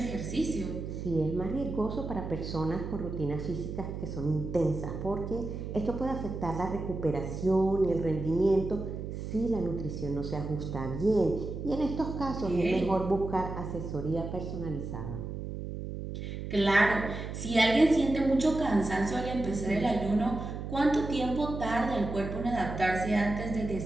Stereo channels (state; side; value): noise; right; hum, 6 dB below the sound